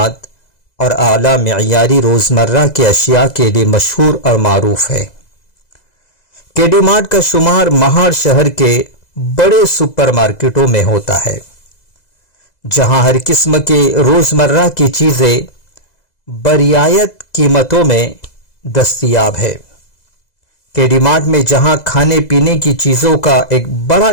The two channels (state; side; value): late; right; 2.0 ms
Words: और आला मेयारी रोज़मर्रा के अशिया के लिए मशहूर और मारूफ है। केडी मार्ट का शुमार महाड़ शहर के बड़े सुपरमार्केटों में होता है, जहां हर किस्म के रोज़मर्रा की चीज़ें बरियायत कीमतों में दस्तयाब है। केडी मार्ट में जहां खाने पीने की चीज़ों का एक बड़ा